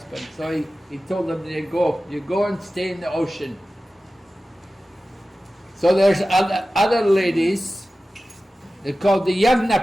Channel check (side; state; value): both; normal; correlation 0.95